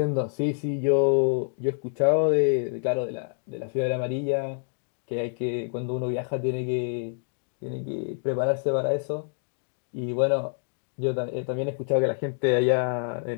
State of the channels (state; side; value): silent; right; digital silence